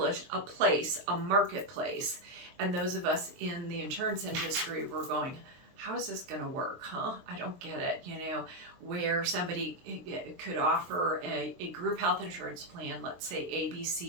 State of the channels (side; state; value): left; late; 23 ms